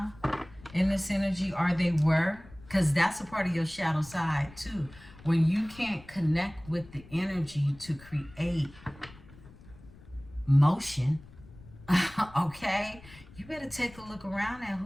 in this energy, or they were, because that's a part of your shadow side too. When you can't connect with the energy to create motion, okay, you better take a look around at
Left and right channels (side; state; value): left; noise; rumble, 21 dB below the sound